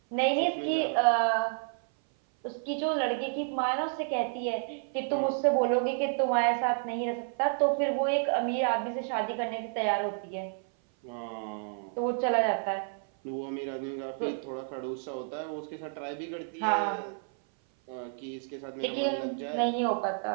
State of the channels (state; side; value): silent; left; 56 dB below the other